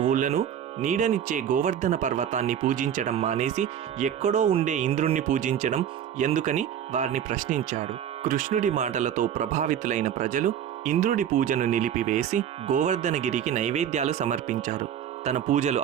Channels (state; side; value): quieter; left; 9.5 dB